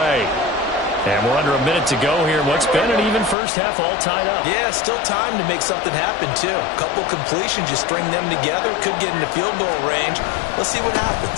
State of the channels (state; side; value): drops out; right; at 3.4 s